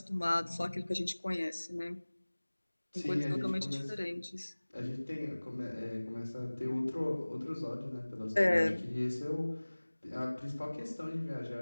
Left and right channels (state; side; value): inverted; both; correlation -1.00